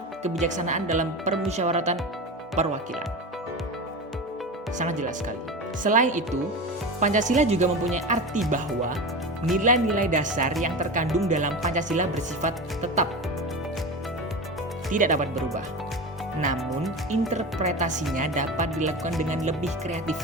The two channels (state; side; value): normal; both; correlation 0.26